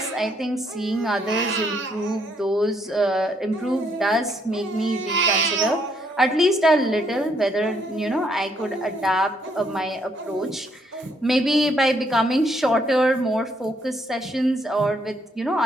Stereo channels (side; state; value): both; normal; correlation 0.71